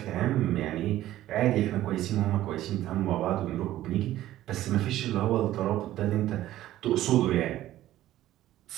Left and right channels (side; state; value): left; quieter; 14.1 dB